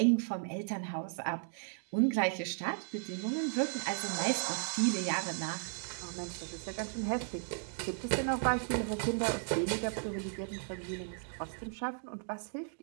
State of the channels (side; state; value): left; silent; digital silence